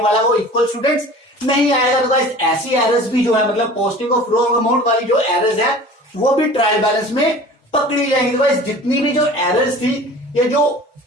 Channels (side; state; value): both; normal; correlation 0.42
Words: वाला वो इक्वल स्टूडेंट्स नहीं आएगा। तो गाइस ऐसी एरर्स भी जो है, मतलब पोस्टिंग ऑफ रॉन्ग अमाउंट वाली जो एरर्स है वो भी ट्रायल बैलेंस में पकड़ी जाएंगी। तो गाइस जितनी भी जो एरर्स थी ये जो